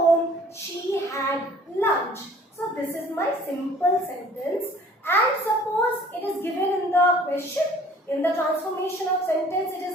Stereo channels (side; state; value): both; normal; correlation 0.52